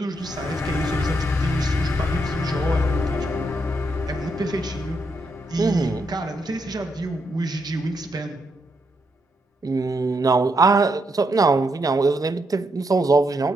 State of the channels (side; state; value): both; normal; correlation 0.79